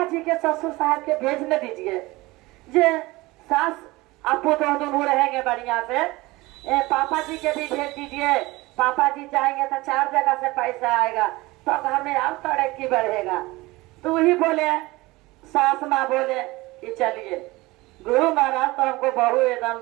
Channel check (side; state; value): left; quieter; 21.1 dB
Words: जी के ससुर साहब के भेज न दीजिए, जे सास आपको तो दोनों रहेंगे बढ़िया से, पापा जी के भी भेज दीजिए, पापा जी जाएंगे तो 4 जगह से पैसा आएगा, तो घर में और तरक्की बढ़ेगा। तो वही बोले, सास माँ बोले कि चलिए गुरु महाराज तो हमको बहू एकदम